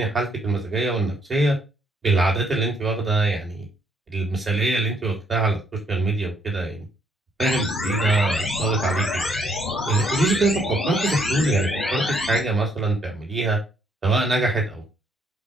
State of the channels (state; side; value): normal; both; correlation 0.69